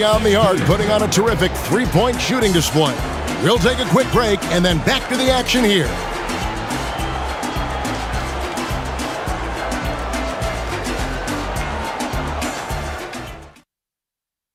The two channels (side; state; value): both; identical; correlation 1.00